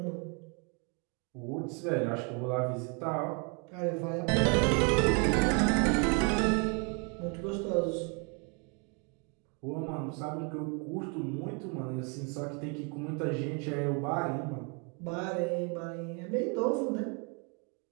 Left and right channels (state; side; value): quieter; left; 35.2 dB